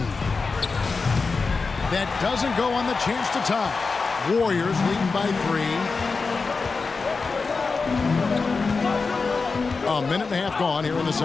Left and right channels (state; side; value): quieter; right; 4.4 dB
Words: That doesn't go on the chance to tie. Warriors leading by 3. A minute and a half gone here in the